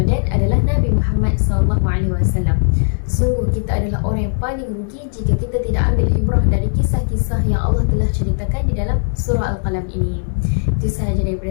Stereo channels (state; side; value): silent; right; digital silence